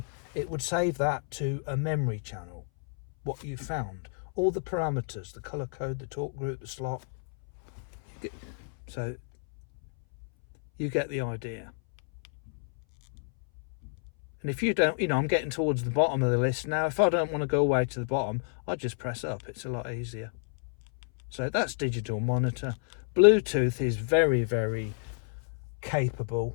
it would save that to a memory channel, what you found, all the parameters, the color code, the talk group, the slot. So you get the idea. And if you don't, you know, I'm getting towards the bottom of the list now. If I don't want to go all the way to the bottom, I just press up. It's a lot easier. So that's digital monitor. Bluetooth is very, very capable,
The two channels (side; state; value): right; silent; 58 dB below the other